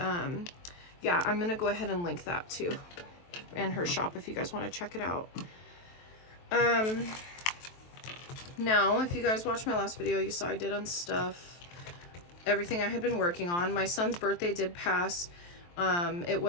yeah, I'm gonna go ahead and link that too, and her shop if you guys want to check it out. Now, if you guys watched my last video, you saw I did unstuff everything I had been working on. My son's birthday did pass. It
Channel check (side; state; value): right; late; 23 ms